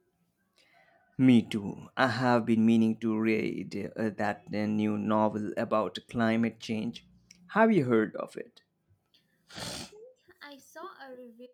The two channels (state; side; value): identical; both; correlation 1.00